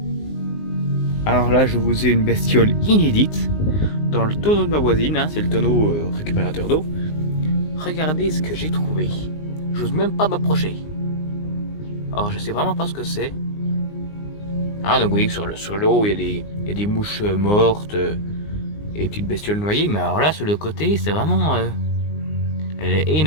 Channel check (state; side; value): late; right; 19 ms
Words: Alors là, je vous ai une bestiole inédite dans le tonneau de ma voisine, hein, c'est le tonneau récupérateur d'eau. Regardez ce que j'ai trouvé. J'ose même pas m'approcher. Alors, je sais vraiment pas ce que c'est. Ah, donc vous voyez que sur l'eau, il y a des mouches mortes et des petites bestioles noyées, mais alors là, sur le côté, c'est vraiment... elle est